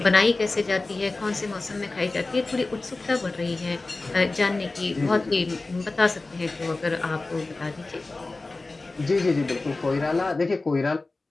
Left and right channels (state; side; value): quieter; right; 3.3 dB